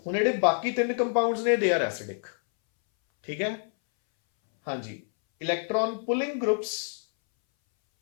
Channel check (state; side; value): silent; right; 60 dB below the other